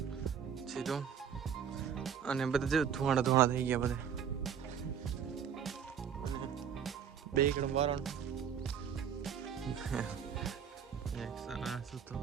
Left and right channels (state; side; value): quieter; left; 7.9 dB